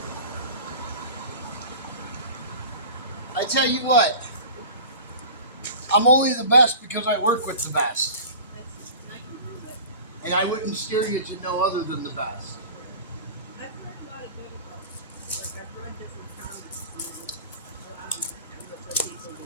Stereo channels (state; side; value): inverted; both; correlation -0.39